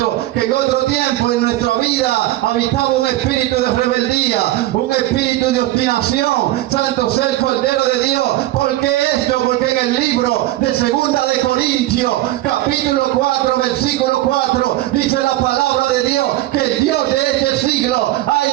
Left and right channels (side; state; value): left; quieter; 15.8 dB